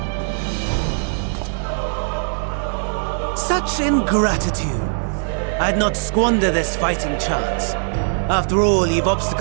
Such ingratitude. I'd not squander this fighting chance. After all, you've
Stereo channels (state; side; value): silent; left; digital silence